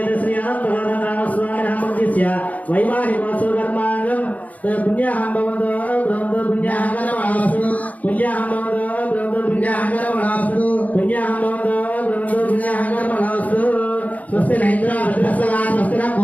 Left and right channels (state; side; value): late; right; 0.074 ms